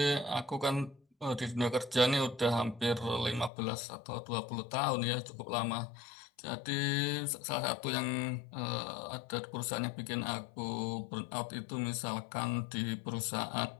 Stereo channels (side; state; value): right; drops out; at 3.5 s